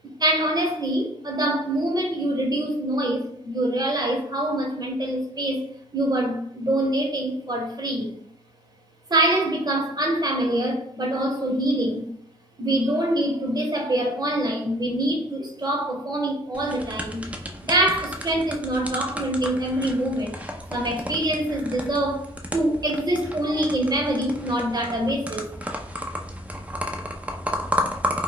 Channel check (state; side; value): normal; both; correlation 0.54